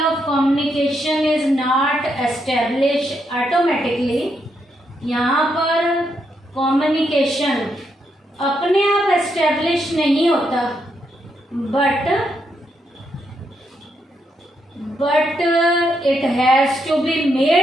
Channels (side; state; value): both; normal; correlation 0.79